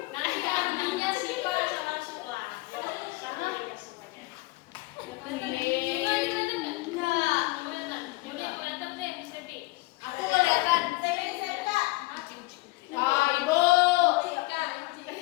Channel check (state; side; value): quieter; right; 22.8 dB